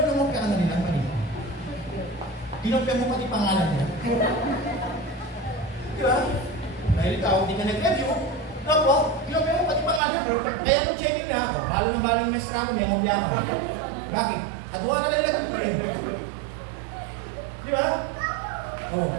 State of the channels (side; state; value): left; drops out; at 10.0 s